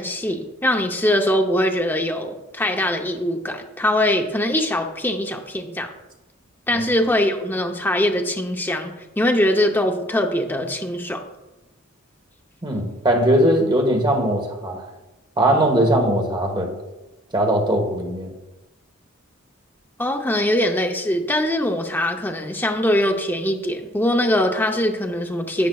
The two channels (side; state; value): both; normal; correlation 0.59